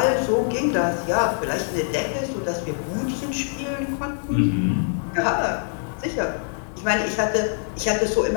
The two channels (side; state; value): right; silent; digital silence